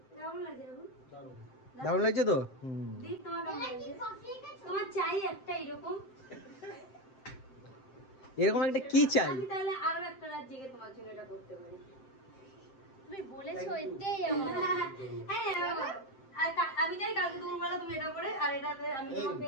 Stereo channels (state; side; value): late; right; 7.6 ms